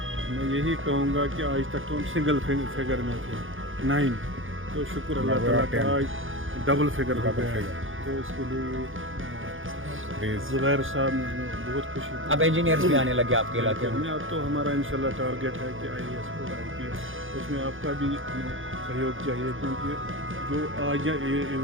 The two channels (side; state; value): left; late; 0.58 ms